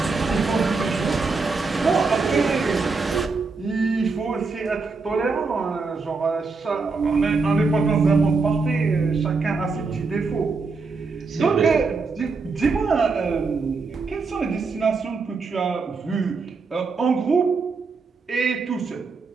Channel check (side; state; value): left; quieter; 4.3 dB